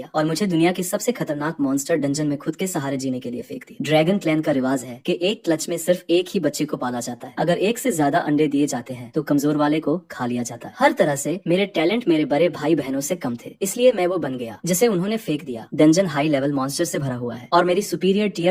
और मुझे दुनिया की सबसे खतरनाक मॉन्स्टर डंजन में खुद के सहारे जीने के लिए फेंक दिया। ड्रैगन क्लैन का रिवाज है कि एक क्लच में सिर्फ एक ही बच्चे को पाला जाता है। अगर एक से ज्यादा अंडे दिए जाते हैं तो कमजोर वाले को खा लिया जाता है। हर तरह से मेरे टैलेंट मेरे बड़े भाई बहनों से कम थे, इसलिए मैं वो बन गया जिसे उन्होंने फेंक दिया। डंजन हाई लेवल मॉन्स्टर से भरा हुआ है और मेरी सुपीरियर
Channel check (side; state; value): both; identical; correlation 1.00